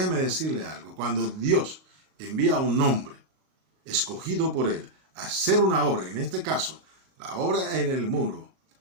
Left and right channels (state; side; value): late; left; 38 ms